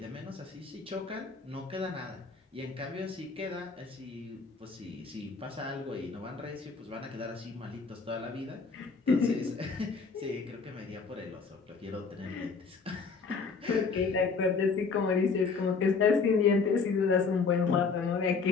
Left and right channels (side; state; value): right; quieter; 4.9 dB